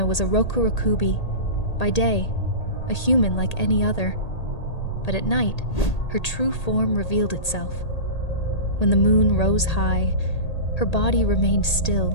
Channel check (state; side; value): late; right; 1.8 ms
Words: was a Rokurokubi. By day, a human like any other. But at night, her true form revealed itself. When the moon rose high, her body remained